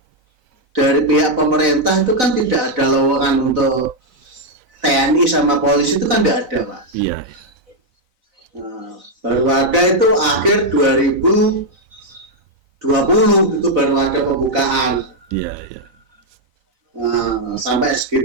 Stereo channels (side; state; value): left; late; 4.0 ms